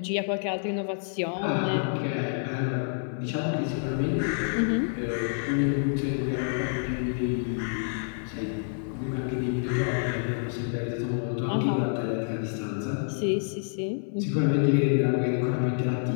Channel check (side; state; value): right; silent; 57 dB below the other